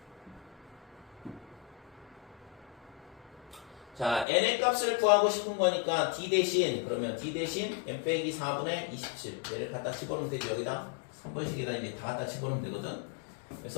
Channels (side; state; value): right; drops out; at 4.2 s